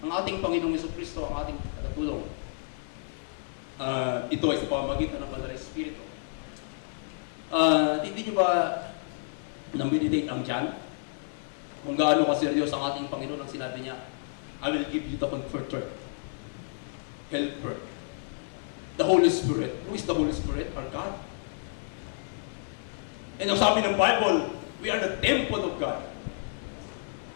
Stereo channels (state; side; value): silent; right; digital silence